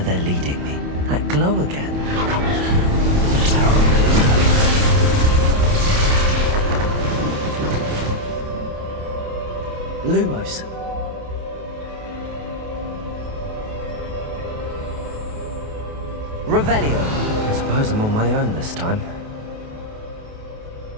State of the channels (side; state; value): left; late; 28 ms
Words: leading me. That glow again. Lumos. Revelio. I suppose I'm on my own this time.